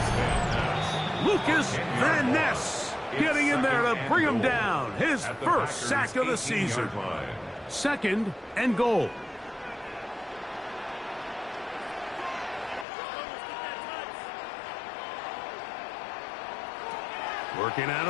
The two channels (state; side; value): drops out; right; at 12.9 s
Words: Lucas Van Ness getting in there to bring him down. His first sack of the season. Second and goal. Working out